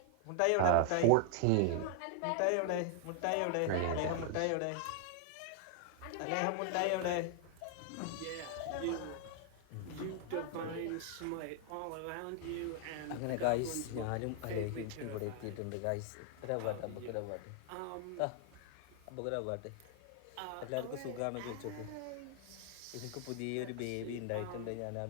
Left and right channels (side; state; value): both; different; correlation 0.00